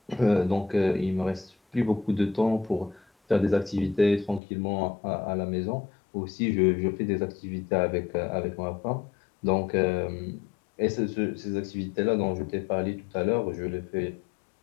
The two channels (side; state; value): right; drops out; at 4.4 s